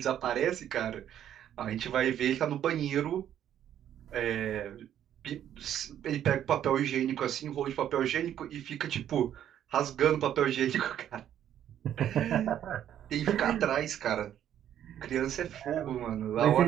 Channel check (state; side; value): quieter; left; 10.5 dB